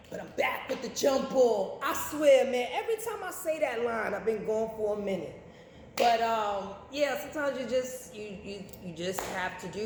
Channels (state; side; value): identical; both; correlation 1.00